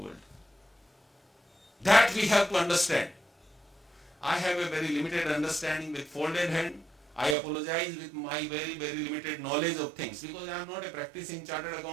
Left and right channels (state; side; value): drops out; left; at 7.4 s